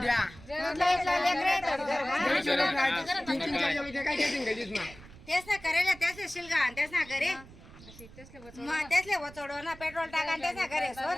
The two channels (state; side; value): noise; right; rumble, 19 dB below the sound